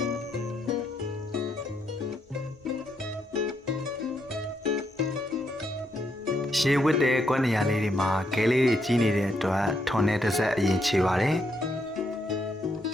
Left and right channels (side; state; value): both; normal; correlation 0.77